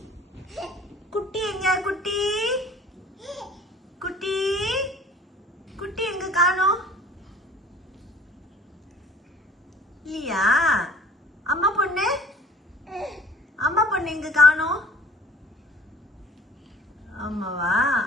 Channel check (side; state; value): both; normal; correlation 0.48